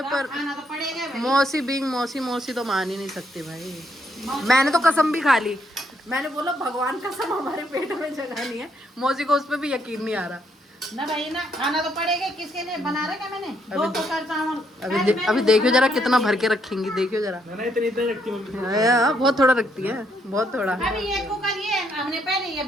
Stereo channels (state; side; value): normal; both; correlation 0.73